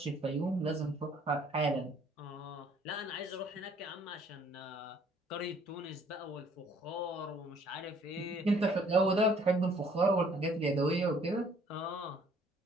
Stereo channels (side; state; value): both; normal; correlation 0.60